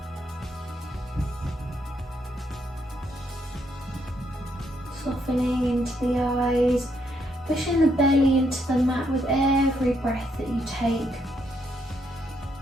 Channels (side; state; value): both; normal; correlation 0.75